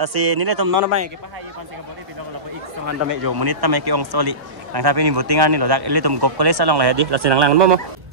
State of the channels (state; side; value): late; left; 1.1 ms